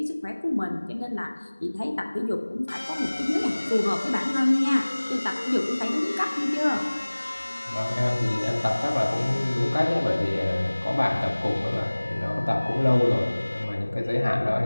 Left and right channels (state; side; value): inverted; both; correlation -1.00